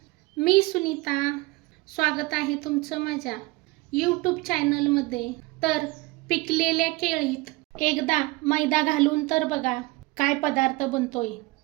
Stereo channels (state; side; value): quieter; left; 22.3 dB